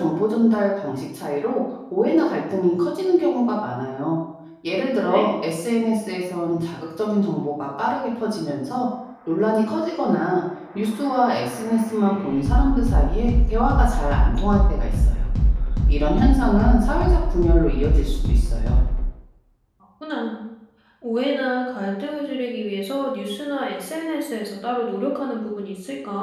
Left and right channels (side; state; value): both; identical; correlation 1.00